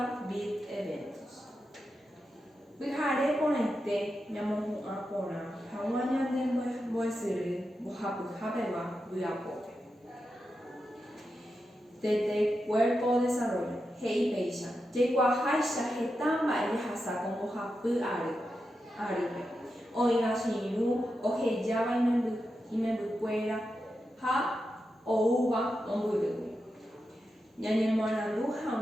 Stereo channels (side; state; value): both; normal; correlation 0.88